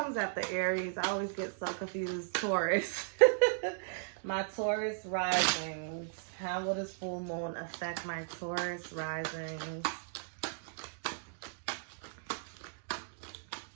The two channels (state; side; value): silent; left; digital silence